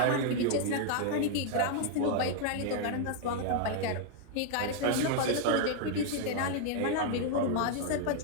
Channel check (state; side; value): different; both; correlation 0.00